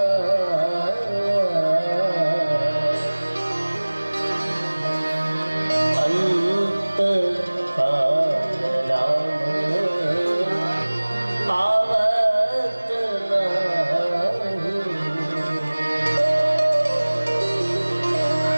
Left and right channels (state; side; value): inverted; both; correlation -1.00